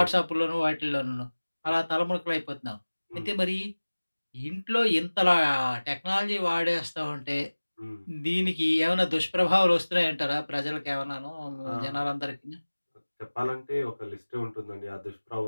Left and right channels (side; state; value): both; inverted; correlation -1.00